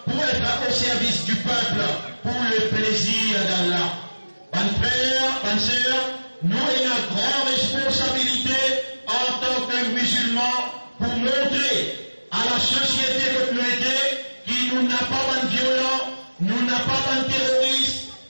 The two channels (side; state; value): both; inverted; correlation -1.00